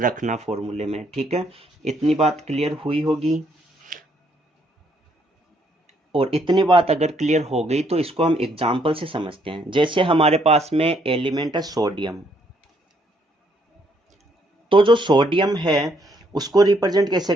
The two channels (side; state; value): both; normal; correlation 0.70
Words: फॉर्मूले में। ठीक है, इतनी बात क्लियर हुई होगी। और इतनी बात अगर क्लियर हो गई तो इसको हम एग्जाम्पल से समझते हैं। जैसे हमारे पास में एलिमेंट है सोडियम, तो जो सोडियम है उसको रिप्रेजेंट कैसे